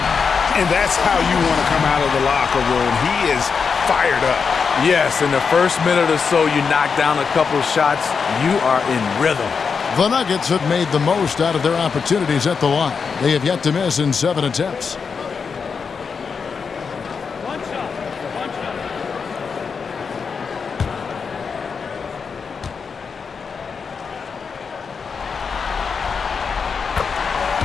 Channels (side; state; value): right; quieter; 5.7 dB